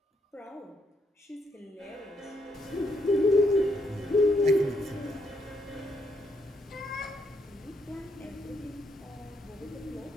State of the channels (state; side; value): normal; both; correlation 0.76